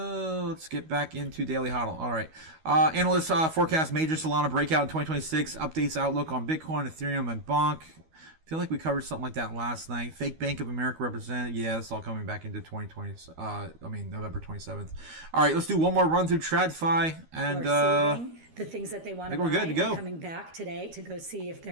get back into Daily Hodl. All right. Analysts forecast major Solana breakout in 2026. Updates outlook on Bitcoin, Ethereum, and Bonk. I feel like we covered something like that last night. Fake Bank of America represented. Yeah, it's all coming back into November 27th. All right, let's do one more run through TradFi. And the things that they want to buy, we're good to go. Coming back today to go see if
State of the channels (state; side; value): late; left; 13 ms